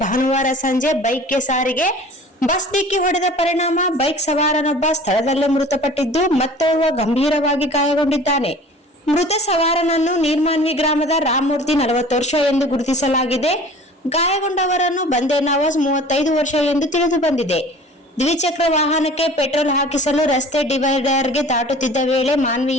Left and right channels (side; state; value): both; normal; correlation 0.45